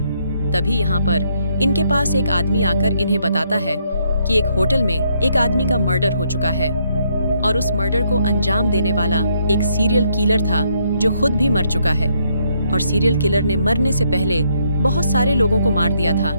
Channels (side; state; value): both; inverted; correlation -0.72